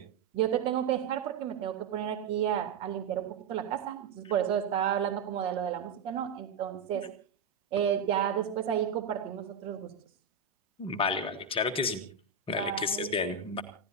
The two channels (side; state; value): left; quieter; 5.0 dB